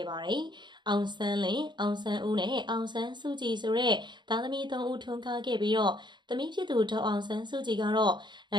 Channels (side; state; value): left; late; 0.22 ms